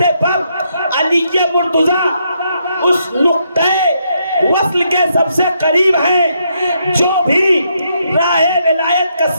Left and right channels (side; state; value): both; inverted; correlation -0.77